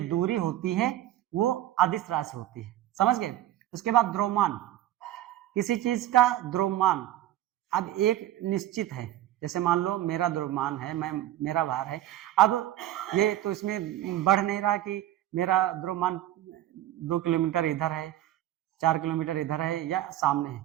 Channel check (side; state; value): left; quieter; 13.5 dB